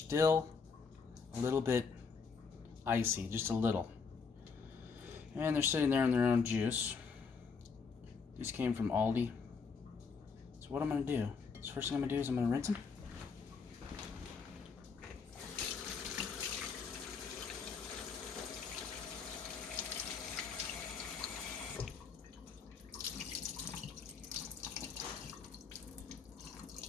a little bit icy, just a little. And they're sitting there in their own juice. These came from Aldi. So what I'm going to do, the first thing I'm going to do is I'm going to rinse them.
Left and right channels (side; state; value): right; quieter; 5.3 dB